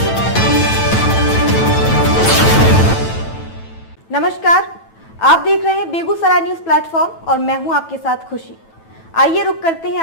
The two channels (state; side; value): late; right; 9.1 ms